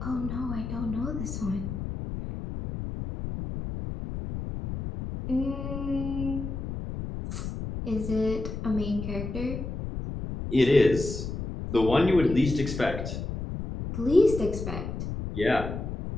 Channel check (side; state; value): left; noise; rumble, 6 dB below the sound